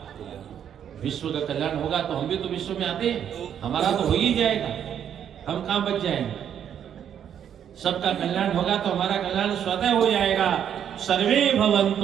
कल्याण होगा, तो हम भी तो विश्व में आते हैं, हमारा तो हो ही जाएगा, हम कहां बच जाएंगे। सबका कल्याण होगा तो हमारा कल्याण स्वतः हो जाएगा। सर्वे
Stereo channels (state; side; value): quieter; left; 9.1 dB